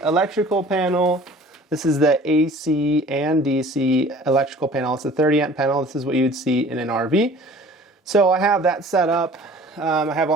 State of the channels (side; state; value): both; normal; correlation 0.48